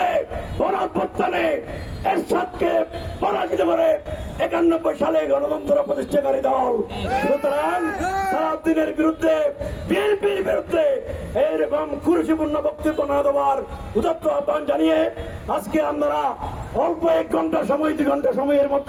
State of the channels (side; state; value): both; identical; correlation 1.00